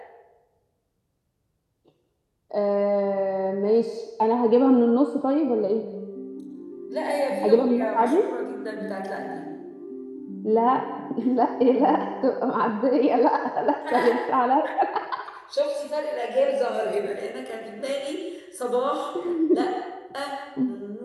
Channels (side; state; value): both; identical; correlation 1.00